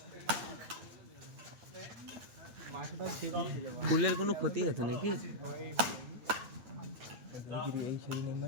ফুলের কোনো ক্ষতি হতো নাকি?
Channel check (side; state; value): left; late; 8.9 ms